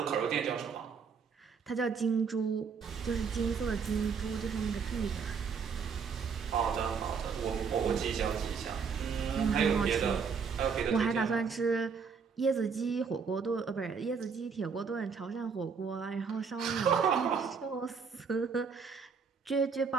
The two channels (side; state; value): left; quieter; 5.8 dB